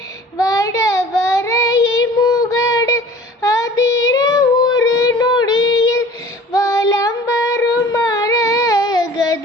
வடவரை முகடு அதிர ஒரு நொடியில் வலம்பரும் மரகத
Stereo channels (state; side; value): normal; both; correlation 0.46